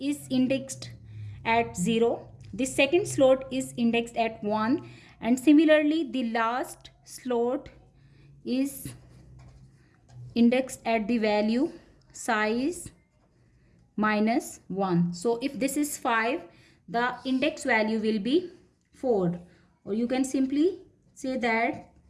indexed at 0, the second slot is indexed at 1, and similarly the last slot is indexed at the value size -1. So if this is 5, the index value will be 4, or you can simply say that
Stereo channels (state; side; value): identical; both; correlation 1.00